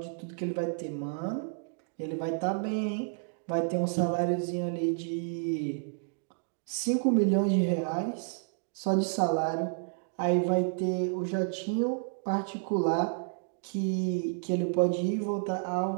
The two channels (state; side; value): silent; left; digital silence